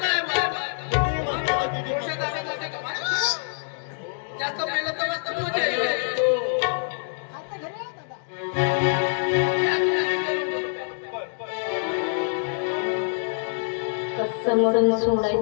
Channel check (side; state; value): right; silent; digital silence